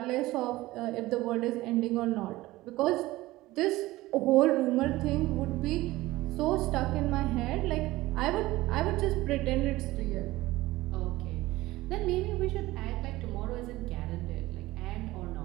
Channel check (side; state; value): left; quieter; 18.1 dB